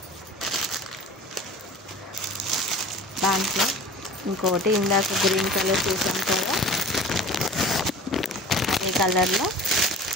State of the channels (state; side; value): normal; both; correlation 0.41